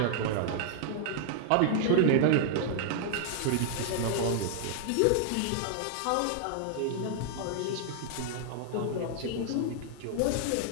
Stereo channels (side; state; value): both; different; correlation 0.00